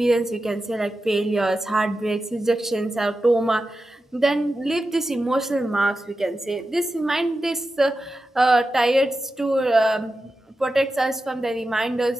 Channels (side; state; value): both; normal; correlation 0.91